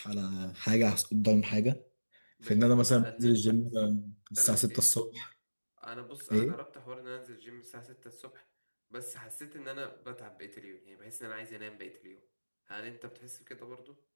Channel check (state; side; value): inverted; both; correlation -1.00